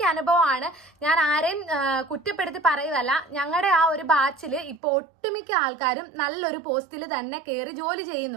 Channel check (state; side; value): drops out; left; at 4.8 s